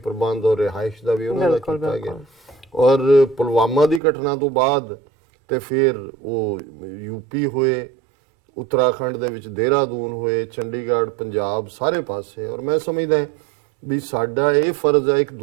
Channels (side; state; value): left; drops out; at 4.0 s